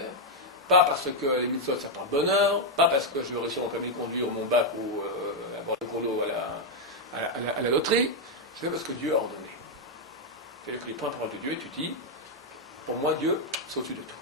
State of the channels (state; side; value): normal; both; correlation -0.01